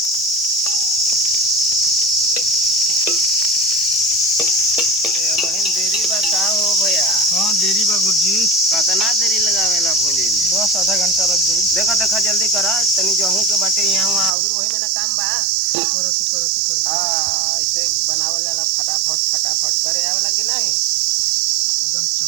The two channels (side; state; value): left; drops out; at 14.4 s